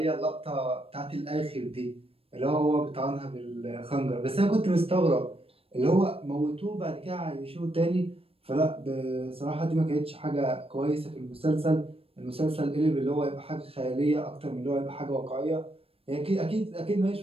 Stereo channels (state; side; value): late; left; 0.28 ms